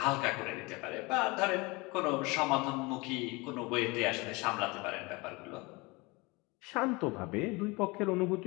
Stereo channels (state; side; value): quieter; right; 25.4 dB